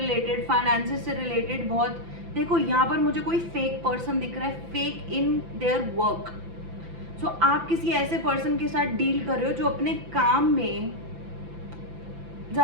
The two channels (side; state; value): left; late; 5.9 ms